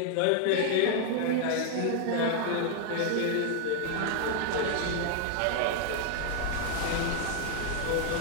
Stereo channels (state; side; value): different; both; correlation 0.00